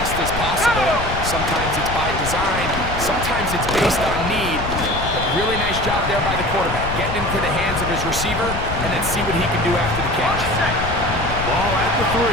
as possible. Sometimes it's by design, sometimes it's based on need. But really nice job there by the quarterback, getting into the hands of his receiver and then see what he can do after the catch. Ball at the 3,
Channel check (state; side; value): noise; left; rumble, 6 dB below the sound